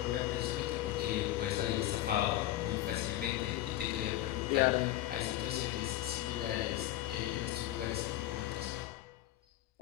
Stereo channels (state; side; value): quieter; right; 14.6 dB